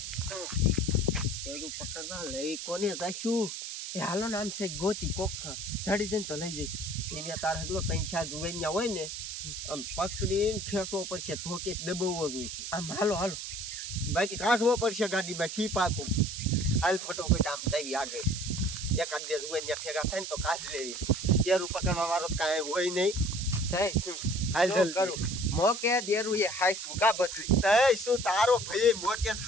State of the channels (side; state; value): right; noise; hiss, 7 dB below the sound